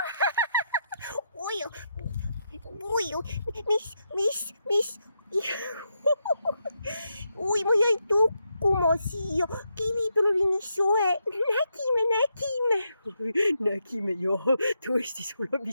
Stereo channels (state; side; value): inverted; both; correlation -0.82